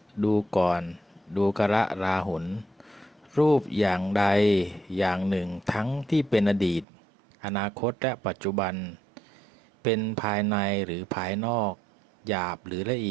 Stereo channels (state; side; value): drops out; left; at 6.9 s